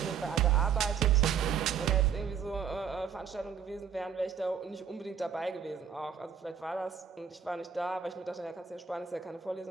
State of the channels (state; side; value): quieter; left; 7.4 dB